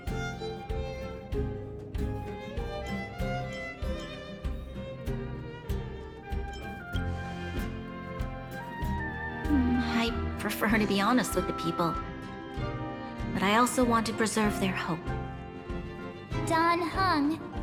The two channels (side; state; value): both; identical; correlation 1.00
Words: I prefer to be honest with the people, but I also want to preserve their hope. Don Hung,